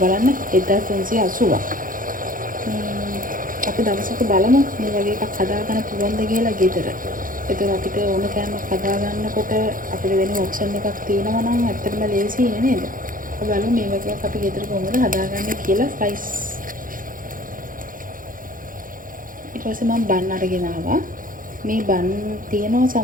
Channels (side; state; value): left; late; 0.40 ms